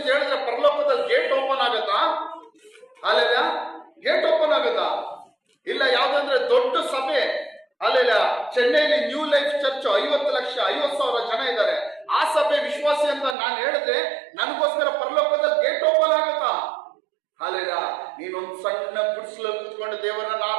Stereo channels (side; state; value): left; drops out; at 13.4 s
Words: ಹೇಳಿದ್ರೆ ಪರಲೋಕದಲ್ಲಿ ಗೇಟ್ ಓಪನ್ ಆಗತ್ತಾ? ಹಾಲೆಲ್ಲ. ಗೇಟ್ ಓಪನ್ ಆಗತ್ತಾ? ಇಲ್ಲ. ಯಾವ್ದಂದ್ರೆ ದೊಡ್ಡ ಸಭೆ. ಅಲ್ಲೆಲ್ಲ ಚೆನ್ನೈಲಿ ನ್ಯೂ ಲೈಫ್ ಚರ್ಚ್ 50,000 ಜನ ಇದ್ದಾರೆ. ಆ ಸಭೆ ವಿಶ್ವಾಸಿ ಅಂತ ನಾನು ಹೇಳಿದ್ರೆ ನನಗೋಸ್ಕರ ಪರಲೋಕದಲ್ಲಿ ಗೇಟ್ ಓಪನ್ ಆಗತ್ತಾ? ಅಲ್ಲೆಲ್ಲ. ನೀನೊಂದು ಸಣ್ಣ ಗುಡಿಸಲು ಕೂತ್ಕೊಂಡು ದೇವರನ್ನ